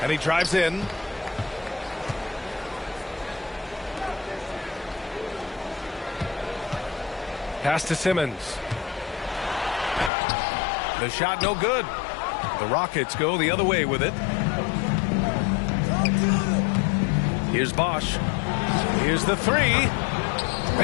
And he drives in. Pass to Simmons. The shot no good. The Rockets go the other way with it. Here's Bosch. Here's the three.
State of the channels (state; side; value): drops out; right; at 10.1 s